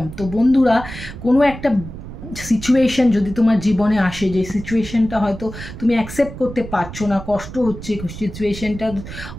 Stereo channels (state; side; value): noise; right; rumble, 12 dB below the sound